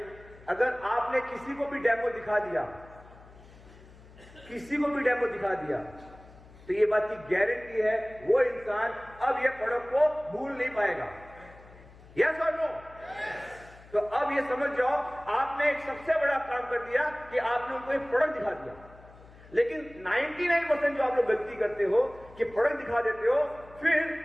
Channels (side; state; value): left; noise; hum, 22 dB below the sound